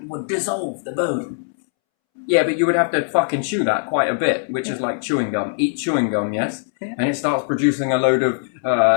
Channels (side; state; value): right; silent; 65 dB below the other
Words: would dissolve the bone. Yeah, but you would have to fucking chew that quite a bit, which is like chewing gum. Eat chewing gum, yes? Yeah. And it starts producing a load of